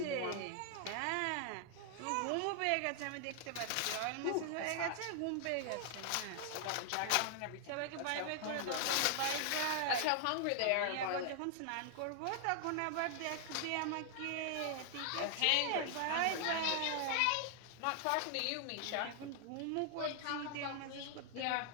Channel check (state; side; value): different; both; correlation 0.00